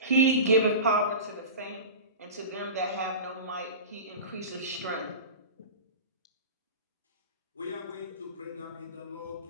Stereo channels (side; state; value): both; inverted; correlation -0.31